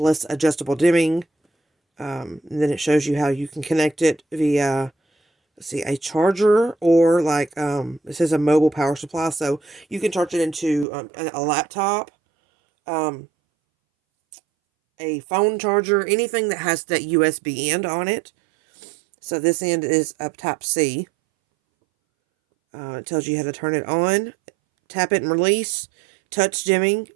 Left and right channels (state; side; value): drops out; left; at 10.9 s